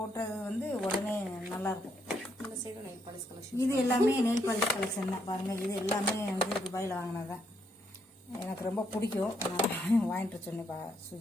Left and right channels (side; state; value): both; normal; correlation 0.75